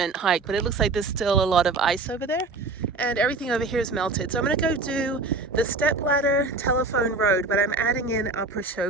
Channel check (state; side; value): quieter; left; 3.6 dB